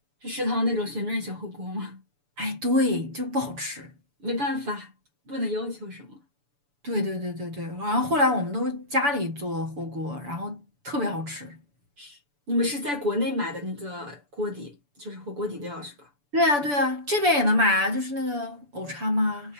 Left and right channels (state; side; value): late; left; 6.9 ms